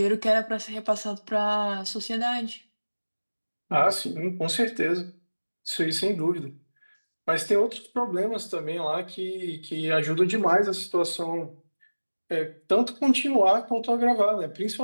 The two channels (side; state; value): both; inverted; correlation -1.00